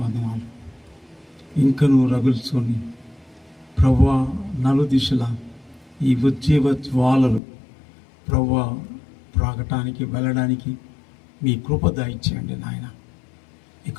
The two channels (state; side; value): drops out; right; at 7.4 s